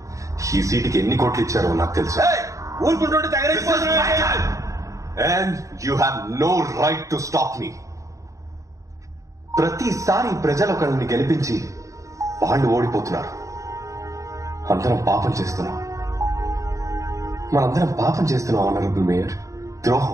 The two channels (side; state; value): left; late; 0.15 ms